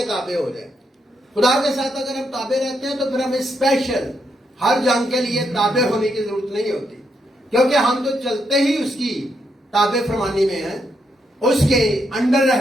تابع ہو جائیں. خدا کے ساتھ اگر ہم تابع رہتے ہیں تو پھر ہمیں اسپیشل ہر جنگ کے لیے تابع ہونے کی ضرورت نہیں ہوتی، کیونکہ ہم تو چلتے ہی اس کی تابع فرمانی میں ہیں، اس کے انڈر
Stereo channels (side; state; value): both; normal; correlation 0.79